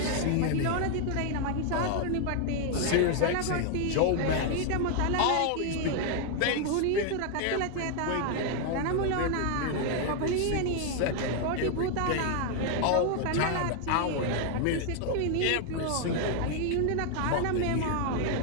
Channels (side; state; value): both; different; correlation 0.00